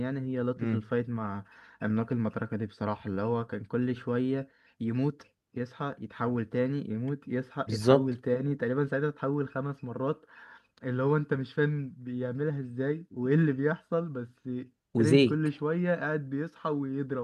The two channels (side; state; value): both; identical; correlation 1.00